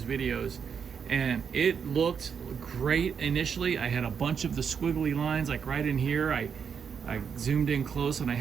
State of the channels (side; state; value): left; quieter; 6.8 dB